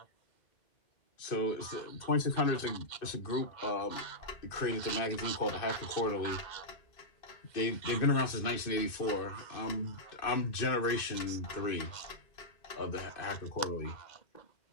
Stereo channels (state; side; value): late; right; 2.5 ms